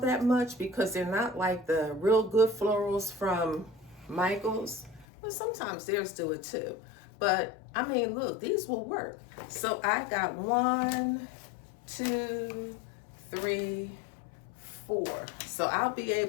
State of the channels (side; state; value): right; drops out; at 5.1 s